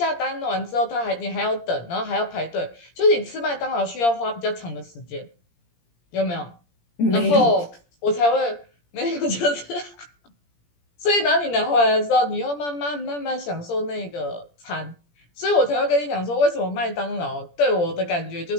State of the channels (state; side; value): late; right; 17 ms